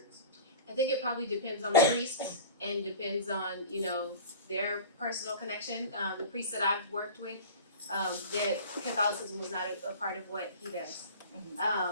I think it probably depends on the priest and depends on, their personal connection. The priest that I've worked with, their Catholicism was not a part of what he does.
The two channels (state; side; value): inverted; both; correlation -0.37